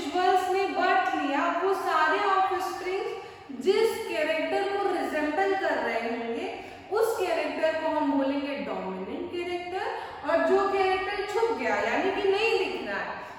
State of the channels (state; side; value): identical; both; correlation 1.00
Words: ने बर्थ लिया, वो सारे ऑफस्प्रिंग्स जिस कैरेक्टर को रिजेंबल कर रहे होंगे, उस कैरेक्टर को हम बोलेंगे डोमिनेंट कैरेक्टर, और जो कैरेक्टर छुप गया यानी कि नहीं दिख रहा है,